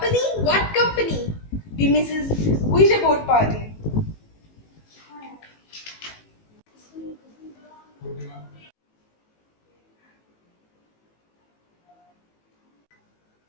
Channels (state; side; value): late; right; 18 ms